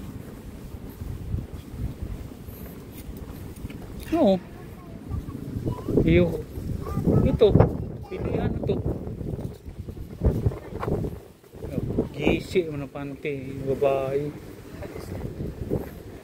Oo. Ito. Pilihan na to. Gisi mo na pante. Babae.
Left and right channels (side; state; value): both; identical; correlation 1.00